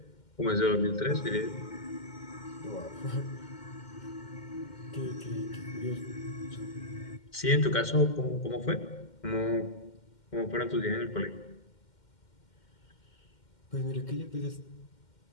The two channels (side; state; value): right; late; 2.1 ms